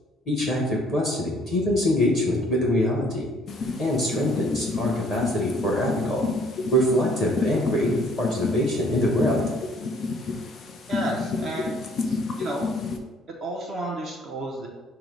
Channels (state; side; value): normal; both; correlation 0.60